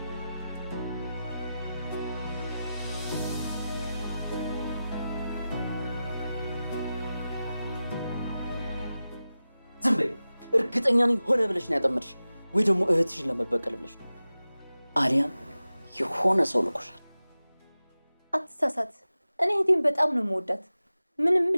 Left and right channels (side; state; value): both; inverted; correlation -0.94